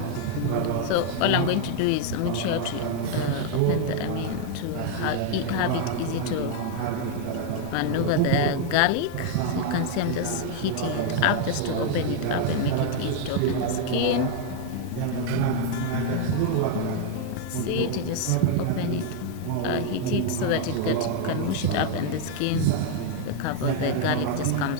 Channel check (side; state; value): both; different; correlation 0.00